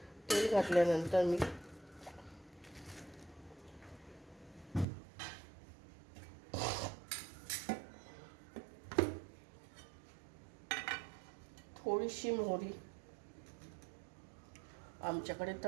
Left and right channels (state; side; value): drops out; left; at 4.9 s